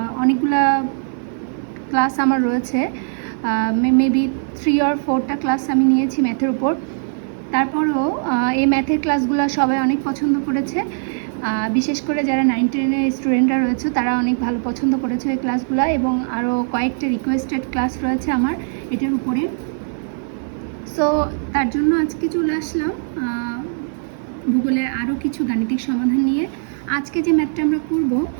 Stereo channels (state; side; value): silent; left; 57 dB below the other